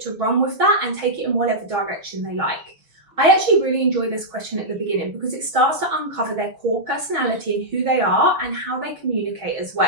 to run with that and take it in whatever direction they like. I actually really enjoy this question at the beginning because it starts to uncover their core personality and who they are and how they communicate as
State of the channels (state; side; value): late; left; 6.3 ms